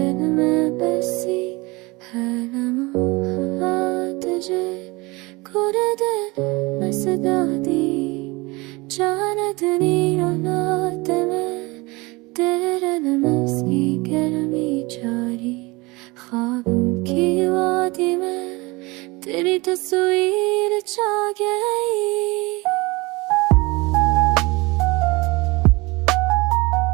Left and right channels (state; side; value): quieter; left; 24.2 dB